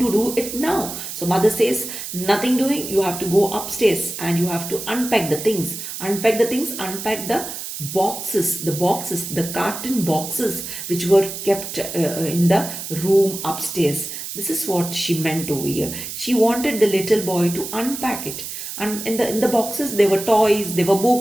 do it now. So mother says, nothing doing, you have to go upstairs and you have to unpack the things. Unpack the things, unpack the boxes, the carton boxes which were kept in the room upstairs. This is what she meant over here. She wanted the little boy to unpack it. And in the boxes, there were toys, there were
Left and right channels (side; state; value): right; noise; hiss, 8 dB below the sound